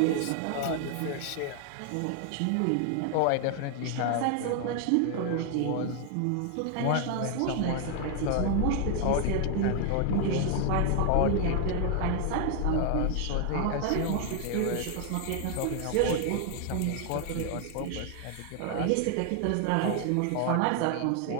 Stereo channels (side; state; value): both; different; correlation 0.00